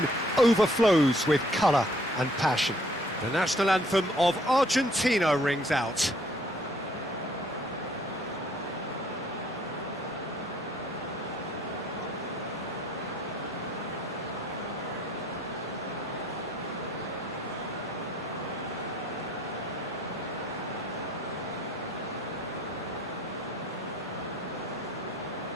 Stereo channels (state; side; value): normal; both; correlation 0.61